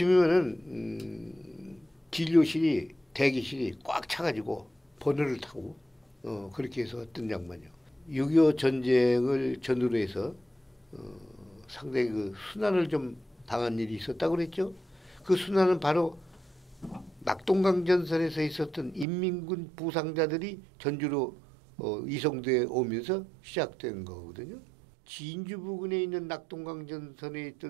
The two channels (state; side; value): drops out; left; at 19.1 s